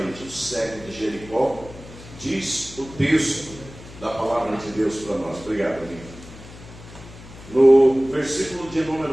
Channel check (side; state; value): left; noise; hum, 17 dB below the sound